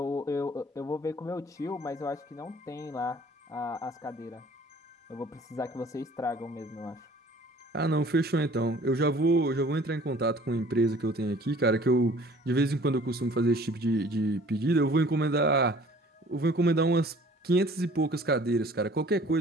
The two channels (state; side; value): normal; both; correlation 0.52